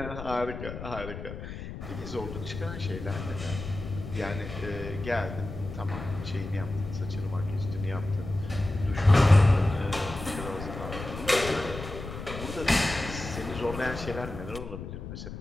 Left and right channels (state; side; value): noise; left; rumble, 9 dB below the sound